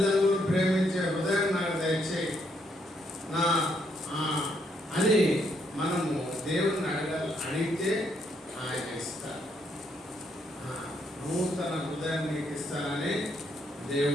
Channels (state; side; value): normal; both; correlation 0.74